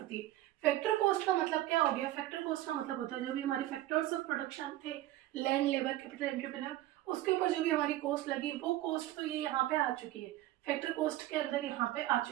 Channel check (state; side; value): quieter; left; 15.2 dB